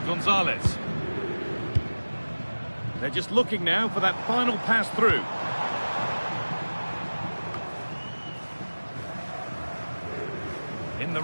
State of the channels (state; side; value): inverted; both; correlation -1.00